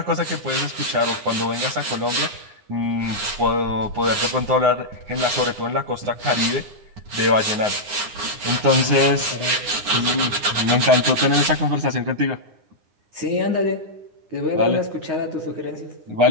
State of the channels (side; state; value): left; late; 9.7 ms